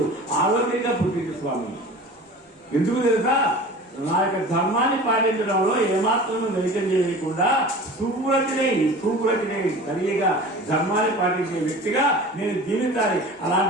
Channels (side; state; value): both; normal; correlation 0.39